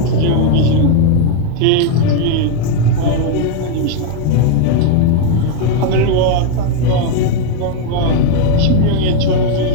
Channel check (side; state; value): both; different; correlation 0.01